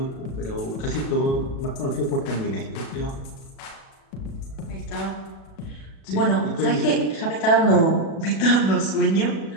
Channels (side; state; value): right; late; 36 ms